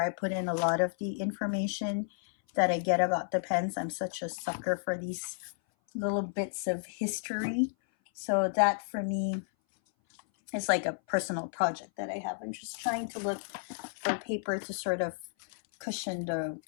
I put in a lot of the information that I get about the pens. I'm such a sucker for these little bits of history. So that for me is like a personal project that I have. I'm just trying to look for paper to sort of cushion the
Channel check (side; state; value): right; silent; 56 dB below the other